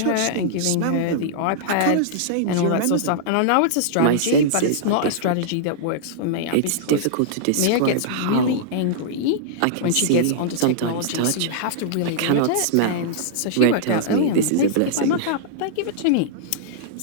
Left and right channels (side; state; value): both; different; correlation -0.02